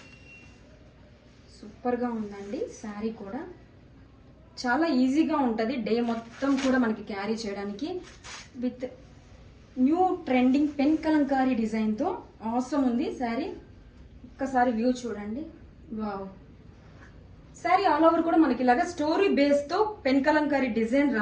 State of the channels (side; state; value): both; identical; correlation 1.00